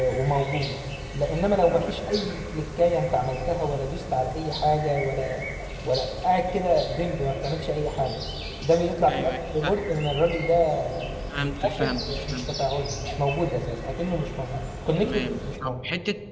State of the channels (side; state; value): both; identical; correlation 1.00